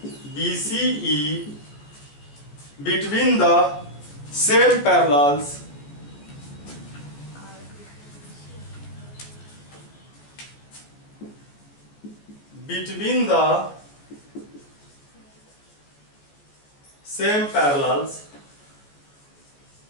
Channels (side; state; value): right; late; 14 ms